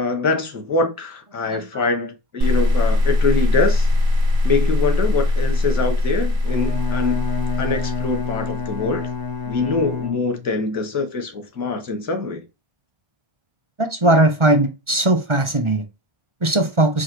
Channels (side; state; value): left; late; 1.4 ms